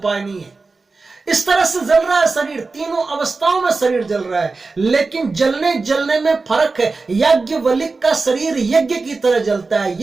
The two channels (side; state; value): left; quieter; 3.9 dB